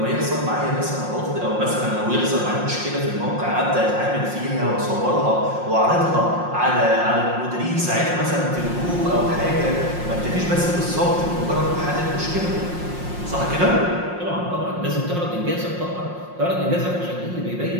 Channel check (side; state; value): left; late; 5.6 ms